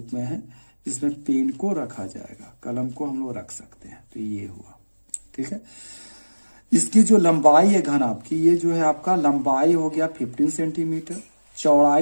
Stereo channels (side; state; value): both; inverted; correlation -1.00